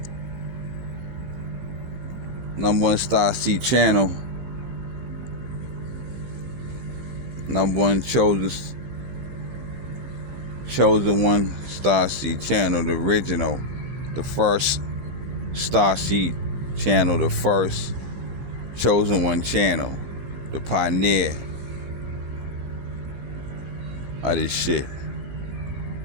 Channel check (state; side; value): late; left; 14 ms